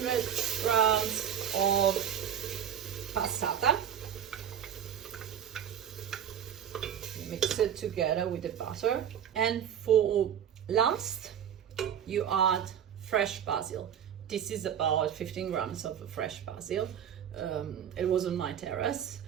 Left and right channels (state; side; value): quieter; left; 9.0 dB